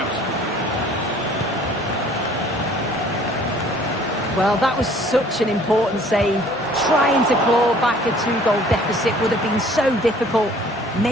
Well, that was such an important save. Trying to claw back a 2-goal deficit would have been so difficult.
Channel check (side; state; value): both; normal; correlation 0.54